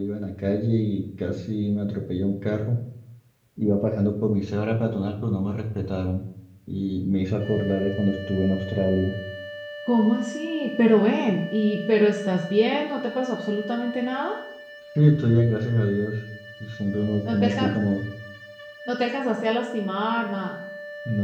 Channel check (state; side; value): identical; both; correlation 1.00